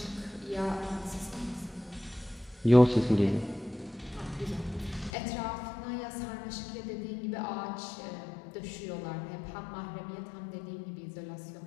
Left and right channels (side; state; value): right; drops out; at 5.1 s